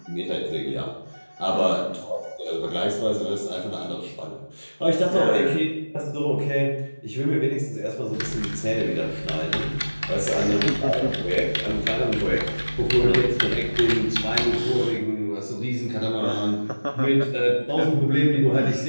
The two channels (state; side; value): inverted; both; correlation -1.00